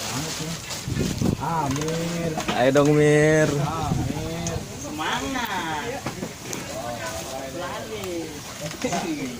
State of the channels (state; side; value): identical; both; correlation 1.00